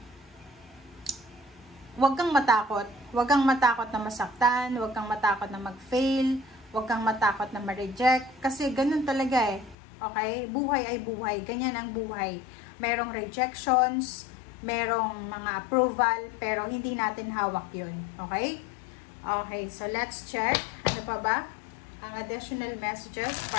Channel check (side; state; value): right; drops out; at 9.8 s